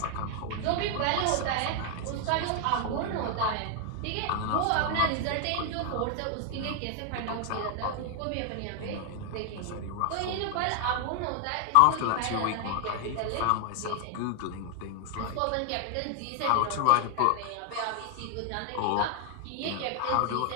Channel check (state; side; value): different; both; correlation 0.00